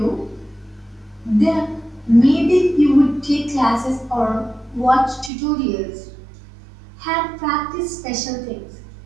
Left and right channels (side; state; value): left; drops out; at 5.3 s